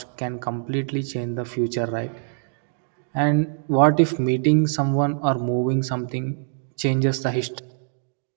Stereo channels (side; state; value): left; silent; digital silence